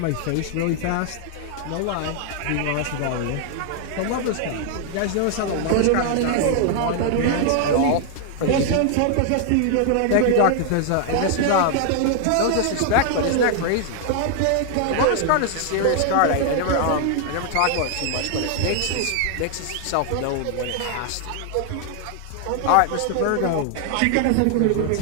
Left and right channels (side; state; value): both; different; correlation 0.00